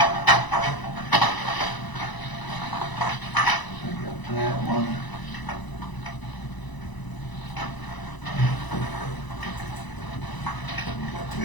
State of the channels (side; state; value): right; late; 1.0 ms